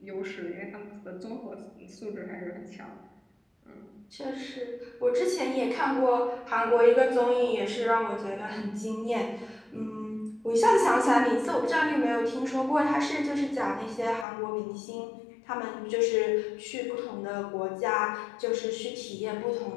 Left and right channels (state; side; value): drops out; right; at 14.2 s